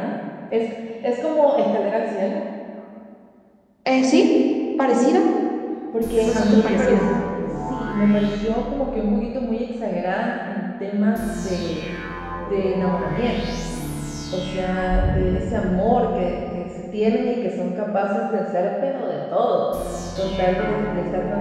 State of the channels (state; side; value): identical; both; correlation 1.00